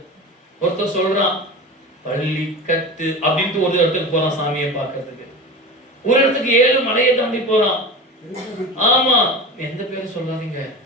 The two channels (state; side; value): normal; both; correlation 0.31